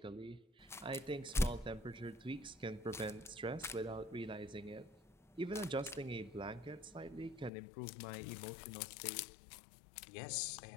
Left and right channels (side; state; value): right; drops out; at 7.5 s